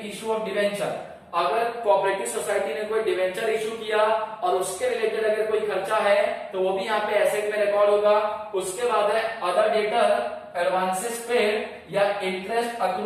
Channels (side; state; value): both; identical; correlation 1.00